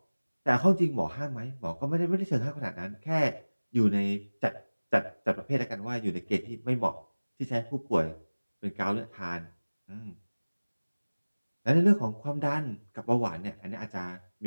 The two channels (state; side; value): inverted; both; correlation -1.00